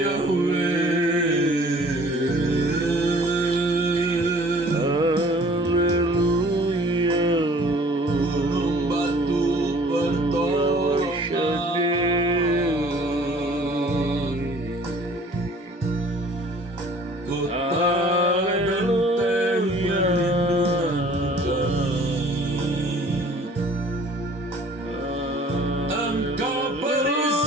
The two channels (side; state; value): both; normal; correlation 0.52